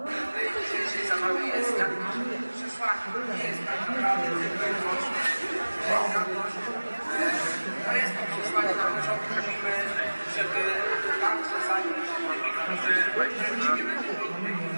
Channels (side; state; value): both; inverted; correlation -1.00